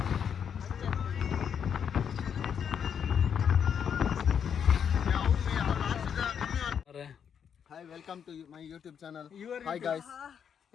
Hi, welcome to my YouTube channel. Hi guys.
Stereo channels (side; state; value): right; quieter; 7.8 dB